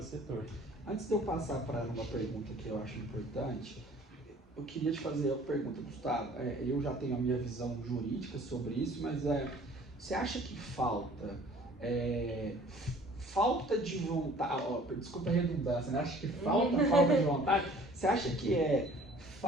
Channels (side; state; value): both; normal; correlation 0.52